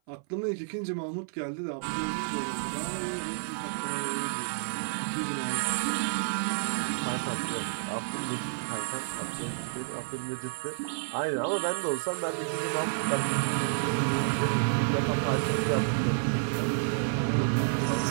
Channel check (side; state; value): left; silent; 56 dB below the other